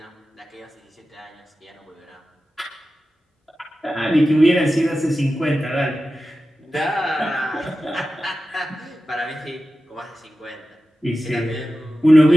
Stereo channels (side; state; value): both; normal; correlation 0.93